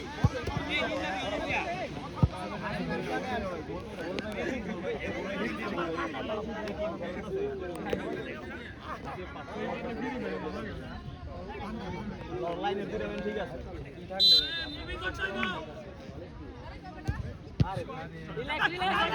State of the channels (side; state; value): both; identical; correlation 1.00